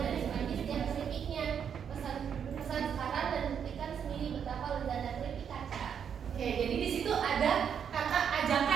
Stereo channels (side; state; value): left; quieter; 7.8 dB